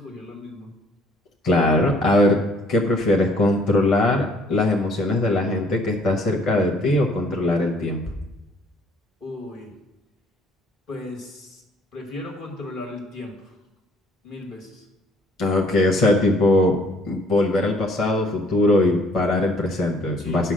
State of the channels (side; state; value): both; normal; correlation 0.61